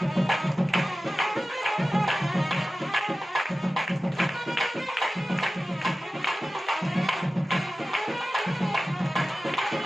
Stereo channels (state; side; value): normal; both; correlation 0.96